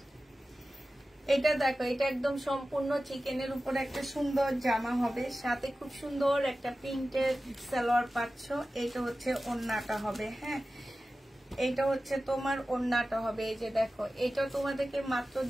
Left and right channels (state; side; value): normal; both; correlation 0.95